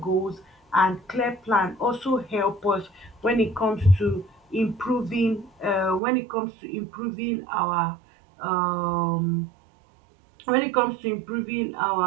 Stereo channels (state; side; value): drops out; left; at 6.0 s